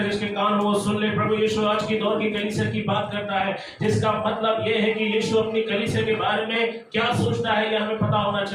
जिसके कान हो वो सुन ले। प्रभु यीशु आज की दौर की कलीसिया की बात करता है, जिसका मतलब यह है कि यीशु अपनी कलीसिया के बारे में क्या सोचता है यह हमें पता होना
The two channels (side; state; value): both; identical; correlation 1.00